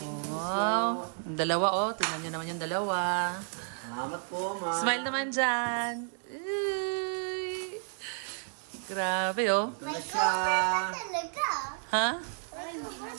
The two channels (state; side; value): silent; left; 57 dB below the other